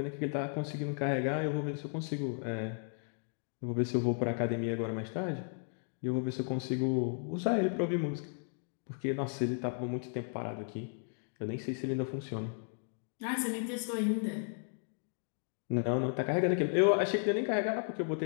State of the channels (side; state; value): right; silent; 55 dB below the other